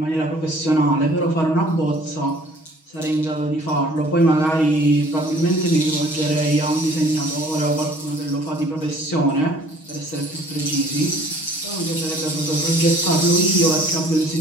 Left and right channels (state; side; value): late; right; 6.4 ms